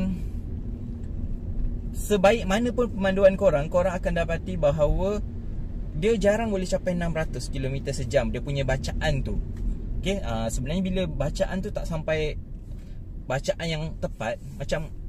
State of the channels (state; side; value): identical; both; correlation 1.00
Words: sebaik mana pun pemanduan korang akan dapati bahawa dia jarang boleh capai 600 km sejam dia punya bacaan tu. Okay, sebenarnya bila bacaan tu tak sampai bacaan yang tepat, macam